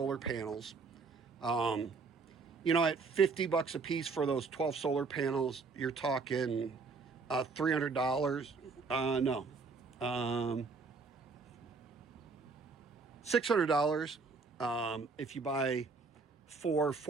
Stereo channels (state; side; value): quieter; left; 4.5 dB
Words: panels. At 50 bucks a piece for those 12 solar panels, you're talking $300. No. $600 if you buy